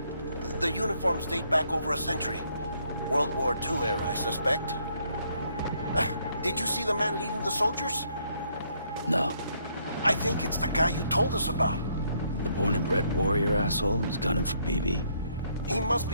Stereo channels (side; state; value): both; inverted; correlation -0.70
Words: The uniforms date back over a century. World War II era, I suspect. Did you see the man leading the soldiers? No. I think it's the guy you told us about. The born and bred warrior asshole who's gunning for BB? He must